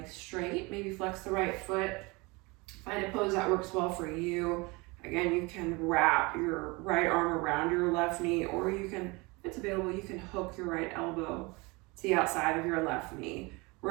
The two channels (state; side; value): quieter; left; 25.8 dB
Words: straight, maybe flex the right foot. Find a pose that works well for you. Again, you can wrap your right arm around your left knee, or you can, if it's available, you can hook your right elbow to the outside of your left knee.